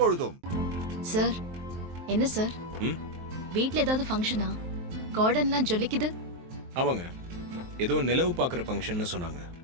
சார், என்ன சார்? வீட்ல ஏதாவது ஃபங்க்ஷனா? கார்டன்லாம் ஜொலிக்குது. ஆமாங்க, ஏதோ நிலவு பார்க்குற ஃபங்க்ஷன்னு சொன்னாங்க.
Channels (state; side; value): late; left; 23 ms